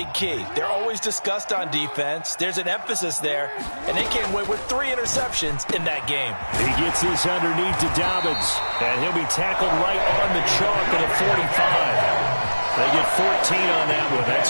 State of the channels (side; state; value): both; inverted; correlation -1.00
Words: key. They're always discussed on defense. There's an emphasis there, and they came away with 3 interceptions in that game. He gets this underneath to Dobbins, and he'll be tackled right on the chalk at a 45. They get 14 on that one.